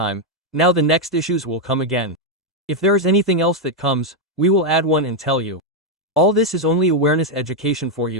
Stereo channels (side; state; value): both; normal; correlation 0.01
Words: Now the next issues will come again. If there is anything else that comes, we will add one and tell you. All this is only awareness education for